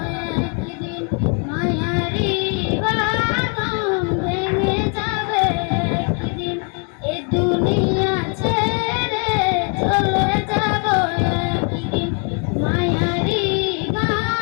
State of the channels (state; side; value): quieter; right; 37.2 dB